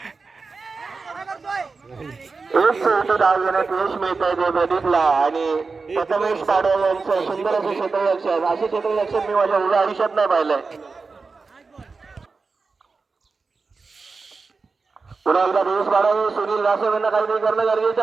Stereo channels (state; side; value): quieter; left; 4.4 dB